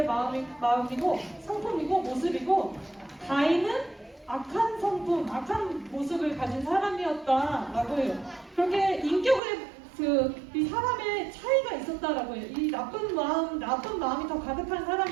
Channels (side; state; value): left; drops out; at 9.4 s